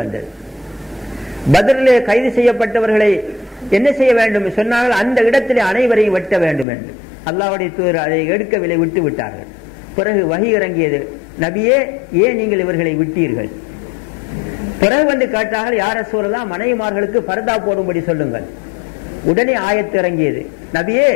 பத்ரிலே கைது செய்யப்பட்டவர்களை என்ன செய்ய வேண்டும் சொன்னார்கள், அந்த இடத்திலே அனைவரையும் வெட்ட வேண்டும் என்று. அல்லாஹ்வுடைய தூதர் அதை எடுக்கவில்லை, விட்டு விட்டார்கள். பிறகு வஹி இறங்கியது, நபியே ஏன் நீங்கள் இவர்களை விட்டீர்கள்? பிறகு வந்து கேட்டார்கள், யா ரசூலல்லாஹ் மனைவிமார்களுக்கு பர்தா போடும்படி சொல்லுங்கள். உடனே ஆயத்து இறங்கியது, நபியே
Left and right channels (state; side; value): drops out; right; at 6.7 s